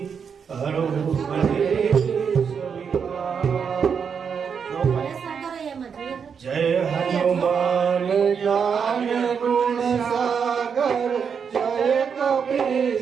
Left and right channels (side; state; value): left; quieter; 6.7 dB